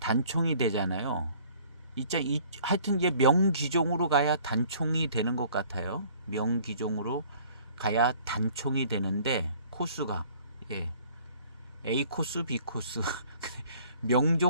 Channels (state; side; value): inverted; both; correlation -0.54